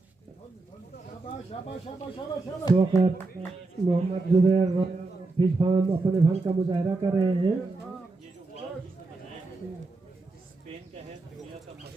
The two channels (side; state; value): left; quieter; 3.4 dB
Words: तो वक्त मोहम्मद जुबैर फिश फार्म अपने फन का मुजाहिरा कर रहे हैं। स्पेन का है, दुनिया का